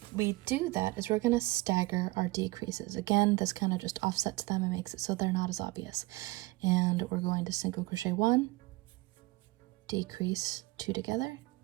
we do that is we're going to stagger our decreases. Again, this kind of just offsets them and makes it so they're not as obvious. And we're going to single crochet 1, decrease 2 together,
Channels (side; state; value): left; quieter; 21.3 dB